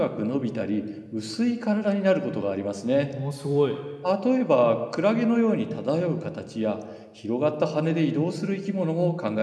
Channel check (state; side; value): identical; both; correlation 1.00